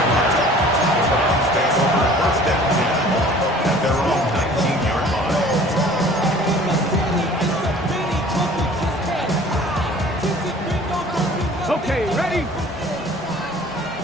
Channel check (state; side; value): normal; both; correlation 0.49